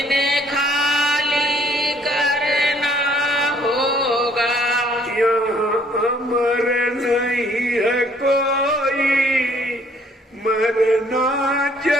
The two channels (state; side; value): normal; both; correlation 0.62